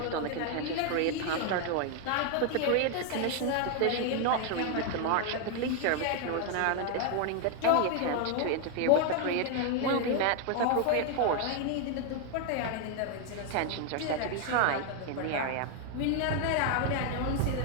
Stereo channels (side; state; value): both; different; correlation 0.01